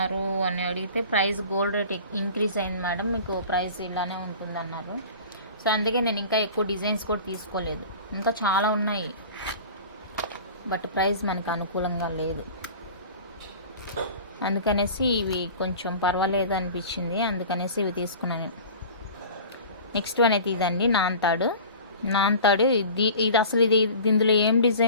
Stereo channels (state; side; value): inverted; both; correlation -0.40